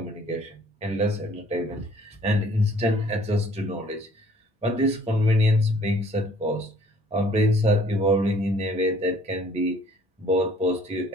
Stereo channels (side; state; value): both; normal; correlation 0.57